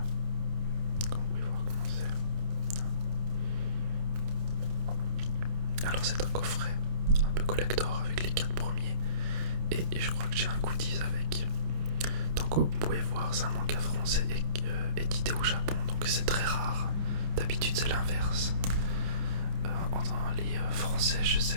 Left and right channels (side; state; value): left; late; 29 ms